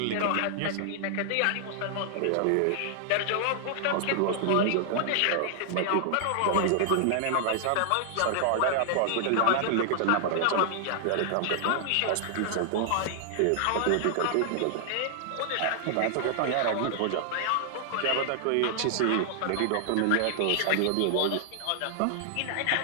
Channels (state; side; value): different; both; correlation -0.01